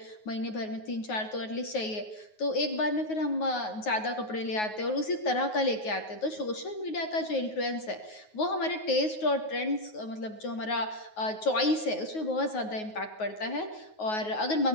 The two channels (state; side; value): late; right; 9.4 ms